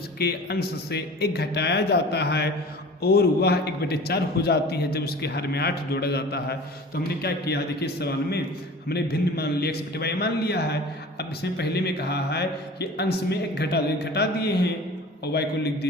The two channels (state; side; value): normal; both; correlation 0.41